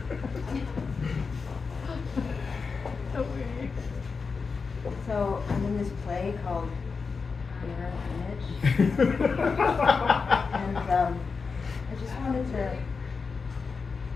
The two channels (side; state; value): right; quieter; 4.9 dB